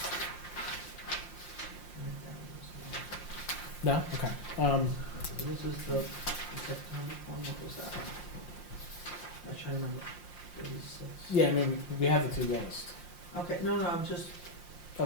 No? Okay. This is the September one, what was that? I'm trying to remember. 36. Yeah, I mean, we have the 2 lowest. Okay, no, I'm just,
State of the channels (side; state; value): right; late; 5.7 ms